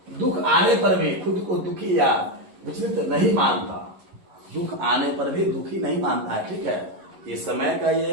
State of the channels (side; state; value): left; late; 11 ms